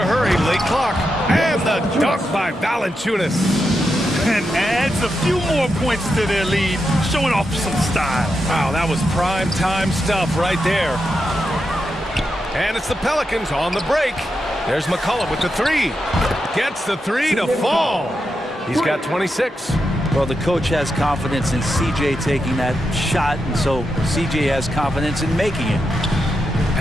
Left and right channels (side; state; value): both; normal; correlation 0.86